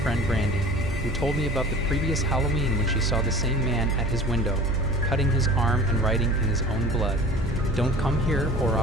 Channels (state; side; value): normal; both; correlation 0.42